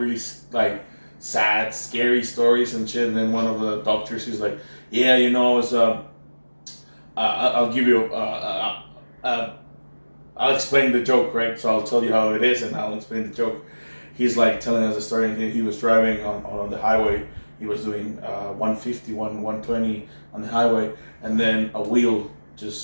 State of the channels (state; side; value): inverted; both; correlation -1.00